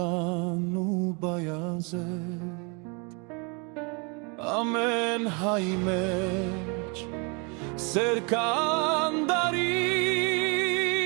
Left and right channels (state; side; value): quieter; left; 32.7 dB